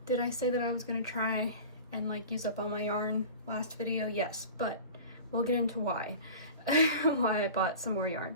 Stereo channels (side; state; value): both; inverted; correlation -0.37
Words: did I say that I was going to try and like use up all my yarn last video? Yes, but we'll get into why I bought some more yarn.